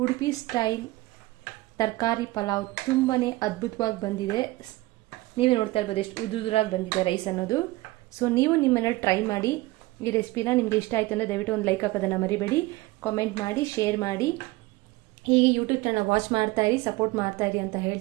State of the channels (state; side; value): quieter; left; 20.0 dB